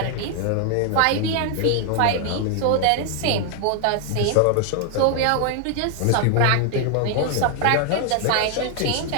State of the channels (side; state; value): both; different; correlation 0.00